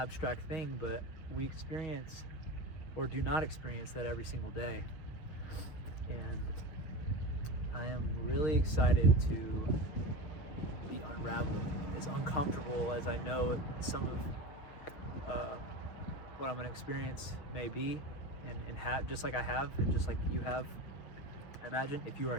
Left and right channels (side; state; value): right; late; 6.3 ms